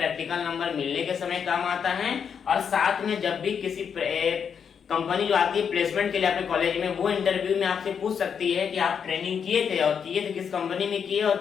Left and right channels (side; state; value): right; quieter; 7.1 dB